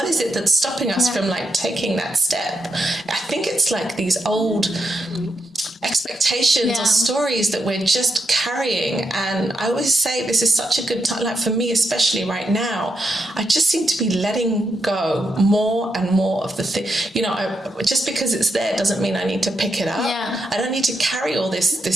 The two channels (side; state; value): both; normal; correlation 0.83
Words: is it that's stopping us from like taking that step? I think it's like these old expectations or stories that we're just carrying. And I always say this is such a good time, like for me especially right now, I just seem to be letting go more and more of the thing. Just because it's there doesn't mean I need to pick it up. I don't need to carry all